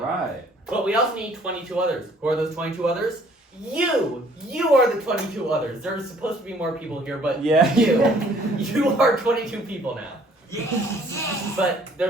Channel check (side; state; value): both; normal; correlation 0.59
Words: But we also need 22 others. Who are those 22 others? You are the 22 others. There's supposed to be more people here, but you are 22 people now. Yes. But